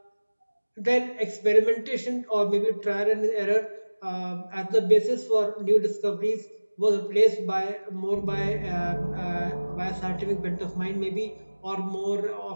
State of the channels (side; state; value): both; inverted; correlation -1.00